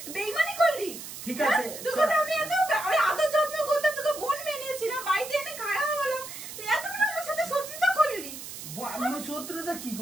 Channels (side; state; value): right; noise; hiss, 11 dB below the sound